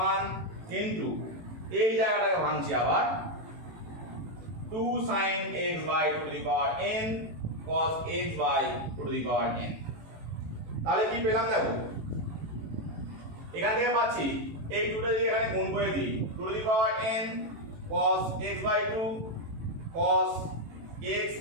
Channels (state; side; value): late; left; 18 ms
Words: 1 into এই জায়গাটাকে ভাঙছি আবার 2 sin x by 2 to the power n cos x by 2 to the power n। তাহলে কি পেলাম দেখো, এখান থেকে পাচ্ছি এই 2টা যদি এখানে গুণ করে দিই 2 to the power n cos x by 2 cos x